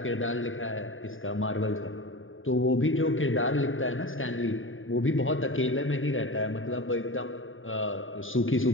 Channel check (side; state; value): right; late; 0.58 ms